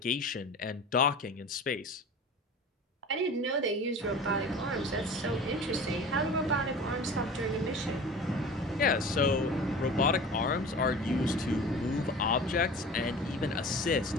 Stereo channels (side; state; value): both; normal; correlation 0.38